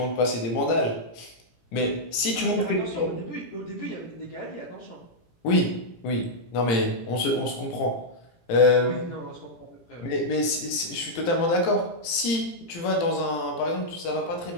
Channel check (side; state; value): right; late; 17 ms